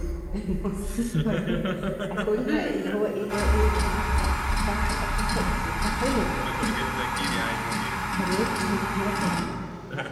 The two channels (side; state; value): both; identical; correlation 1.00